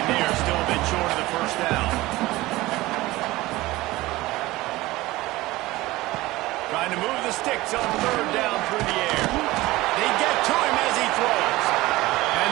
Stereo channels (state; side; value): quieter; left; 18.9 dB